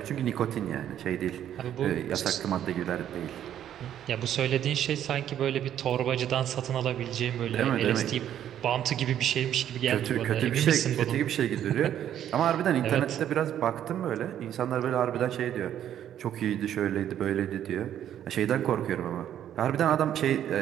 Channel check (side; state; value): left; quieter; 10.6 dB